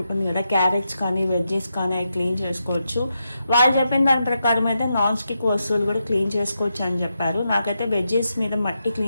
కదా, క్యారెట్స్ కానీ వెజ్జెస్ కానీ అవి క్లీన్ చేసుకోవచ్చు. వాళ్ళు చెప్పిన దాని ప్రకారం అయితే నాన్ స్టిక్ వస్తువులు కూడా క్లీన్ చేసుకోవచ్చు అని చెప్పారు. నాకైతే వెజ్జెస్ మీద మట్టి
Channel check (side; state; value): both; inverted; correlation -0.85